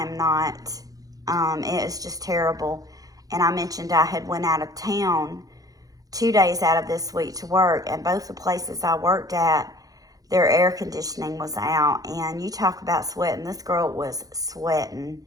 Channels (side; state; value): left; late; 0.17 ms